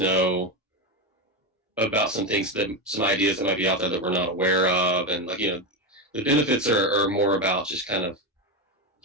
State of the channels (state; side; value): normal; both; correlation 0.13